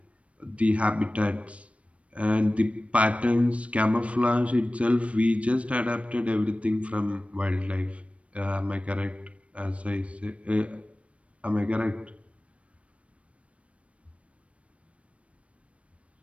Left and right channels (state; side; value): late; left; 0.063 ms